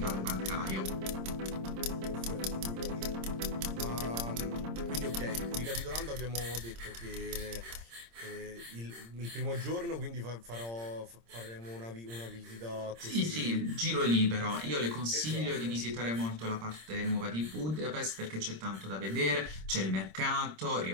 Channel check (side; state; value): left; late; 26 ms